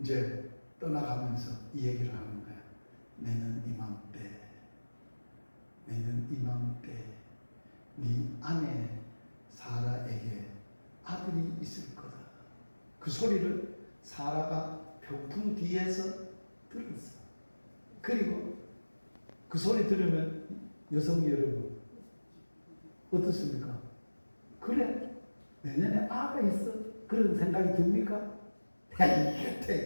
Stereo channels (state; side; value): inverted; both; correlation -1.00